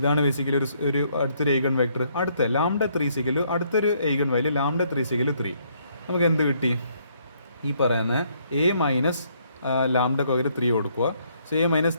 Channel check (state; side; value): inverted; both; correlation -0.69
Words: ബേസിക്കലി ഒരു അടുത്തൊരു ഈഗൺ വെക്ടർ. അടുത്ത λ3 is equal to അടുത്തൊരു eigen value λ3 is equal to 3. നമുക്ക് എന്ത് കിട്ടി? ഈ പറയുന്ന A മൈനസ് ലാംഡക്ക് പകരം 3 കൊടുക്കുക. So A minus